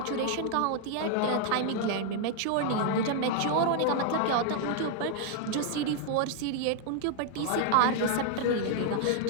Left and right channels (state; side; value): different; both; correlation 0.00